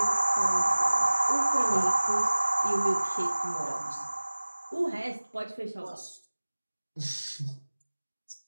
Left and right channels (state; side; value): inverted; both; correlation -1.00